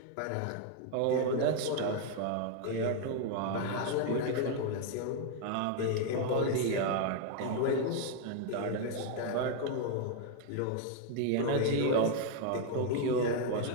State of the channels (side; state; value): both; different; correlation 0.00